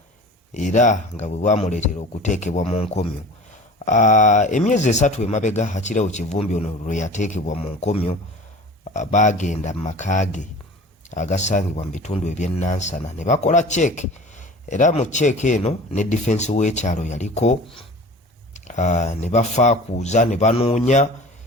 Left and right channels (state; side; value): normal; both; correlation 0.40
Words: era nga bwe bwamuleetera okuteekebwa mu nkomyo. Emyezi 3 Emabega akireewo Kivumbi ono lwe yateekebwa mu nkomyo baagenda mu makaage agasangibwa mu bitundu eby'ennansana ne bakola check. Era mu check eno ne defense w'ekyalo yaliko ne bafaakuuza ne banoonya